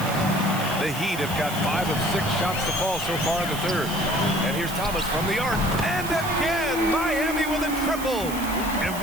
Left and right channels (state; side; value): noise; right; hiss, 11 dB below the sound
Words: The Heat have got 5 of 6 shots to fall so far in the third. And here's Thomas from the arc. And again, Miami with a triple. And